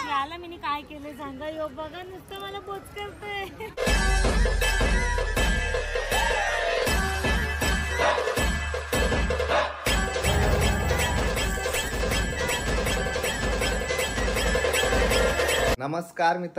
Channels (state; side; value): identical; both; correlation 1.00